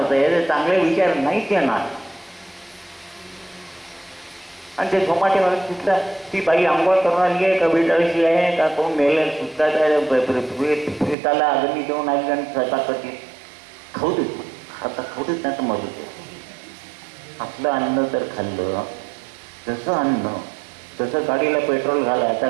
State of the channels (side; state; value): left; drops out; at 11.2 s